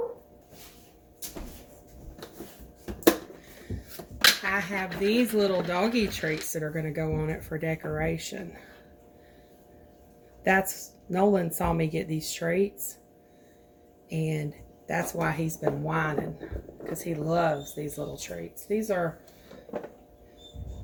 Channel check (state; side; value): identical; both; correlation 1.00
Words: I have these little doggy treats that are going to go on it for decoration. Nolan saw me get these treats, and that's why he's been whining, because he loves these little treats. These are